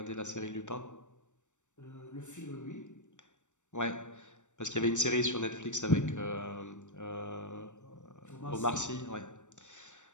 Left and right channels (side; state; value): right; late; 0.85 ms